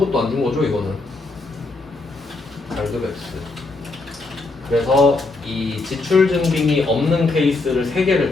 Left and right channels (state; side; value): quieter; right; 3.4 dB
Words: 안 준 거죠, 이거는. 발급 X. 그래서 이 지출 증빙이 없는 케이스를